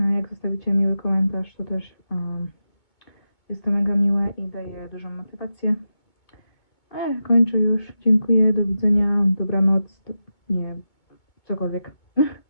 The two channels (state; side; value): late; right; 2.1 ms